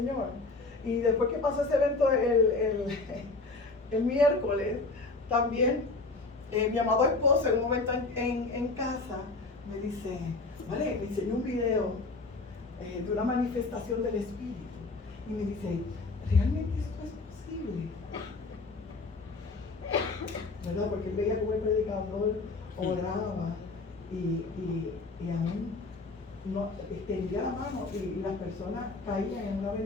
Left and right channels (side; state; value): right; quieter; 3.5 dB